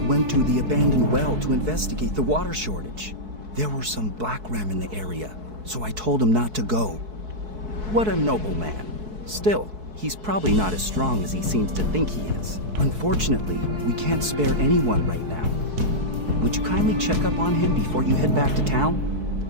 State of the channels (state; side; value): late; left; 4.6 ms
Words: went to the abandoned well to investigate the water shortage. There were some black ram in the area, so I told him not to go. What a noble man. Still, he's probably not as strong as he seems to think he is. Unfortunately, we can't spare anyone right now. Would you kindly check up on him before you head back to town?